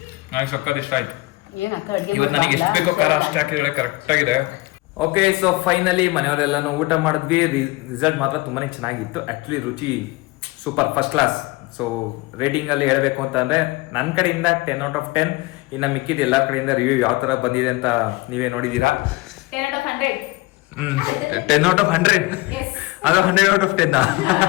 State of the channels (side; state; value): right; quieter; 22.3 dB